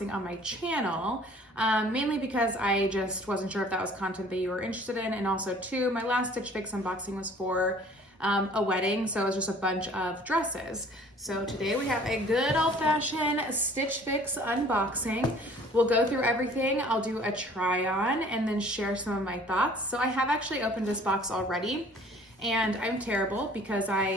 on my channel, mainly because I just wasn't sure if that was content that you were interested in. And also too, my last Stitch Fix unboxing was for a wedding, so it was just a bunch of dresses. So today we have a good old-fashioned Stitch Fix unboxing. We'll go through everything. I'll do a try on and then share some of my thoughts. So I have actually opened this box already, and I'm terrible because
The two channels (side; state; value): both; normal; correlation 0.53